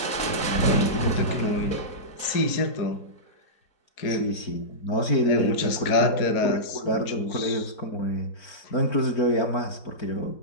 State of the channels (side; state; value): right; late; 4.8 ms